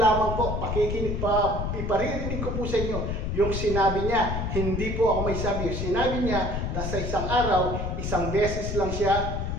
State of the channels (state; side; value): noise; left; rumble, 2 dB below the sound